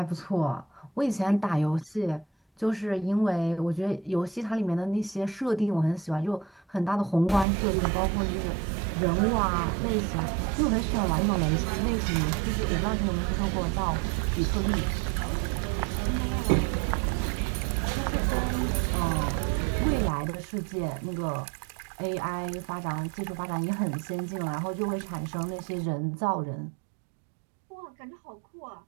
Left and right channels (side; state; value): left; drops out; at 7.5 s